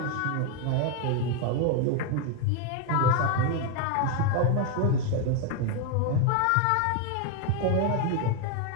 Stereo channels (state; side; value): different; both; correlation 0.01